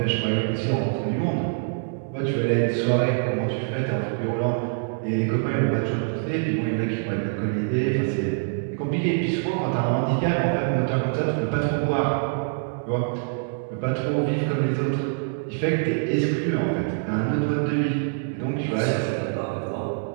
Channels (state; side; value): silent; left; 61 dB below the other